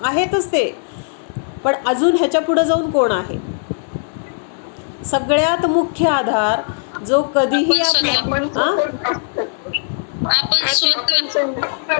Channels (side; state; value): right; silent; 67 dB below the other